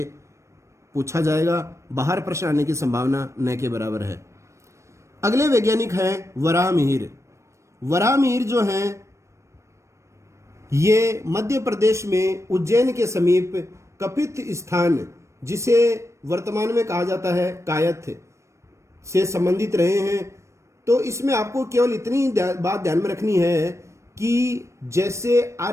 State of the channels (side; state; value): left; late; 0.14 ms